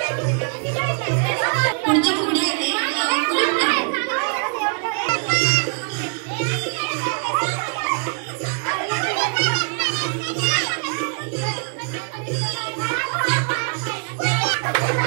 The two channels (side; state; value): left; quieter; 39.4 dB